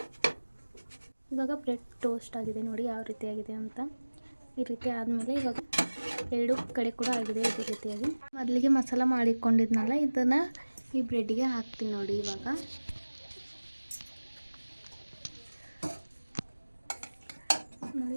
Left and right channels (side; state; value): both; inverted; correlation -1.00